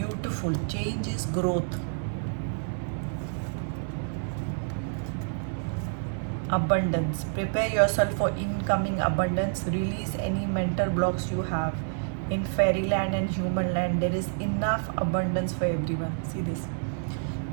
Change is growth. Abundance. Prepare yourself for incoming abundance. Release any mental blocks you have. In fairyland and human land, there is enough abundance for everyone. See this.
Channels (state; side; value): silent; left; 59 dB below the other